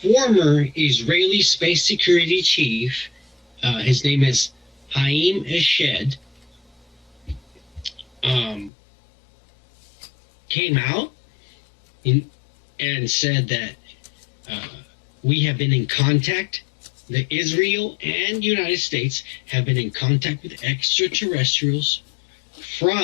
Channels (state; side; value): drops out; right; at 8.7 s